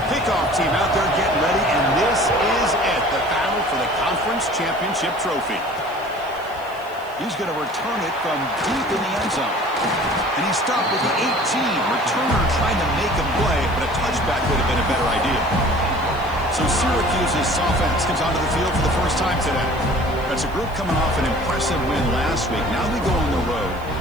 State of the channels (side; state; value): left; noise; hiss, 25 dB below the sound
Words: Kickoff team out there getting ready, and this is it, the battle for the conference championship trophy. He's going to return it from deep in the end zone. And he stopped with the 18. Returner trying to make a play, but a touchback would have been a better idea. So Syracuse's offense comes onto the field for the first time today. That's a group coming off an impressive win last week. Now they go on the road